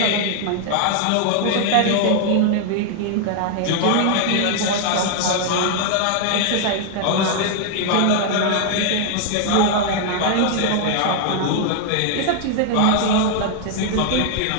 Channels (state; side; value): different; both; correlation 0.00